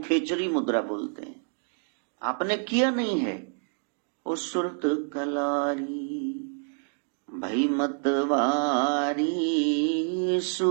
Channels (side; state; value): left; silent; 57 dB below the other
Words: खेचरी मुद्रा बोलते हैं। आपने किया नहीं है। ओ सुरत कलारी भई मतवारी,